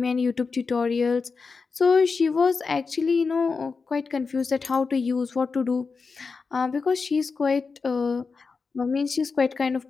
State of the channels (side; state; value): right; quieter; 4.7 dB